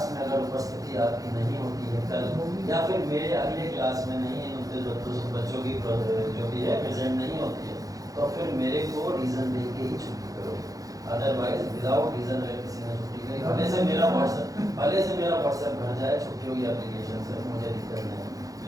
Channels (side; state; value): left; late; 0.17 ms